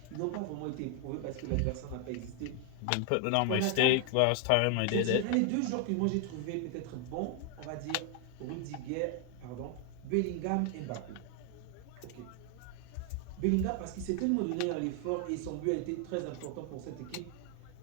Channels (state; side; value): different; both; correlation 0.00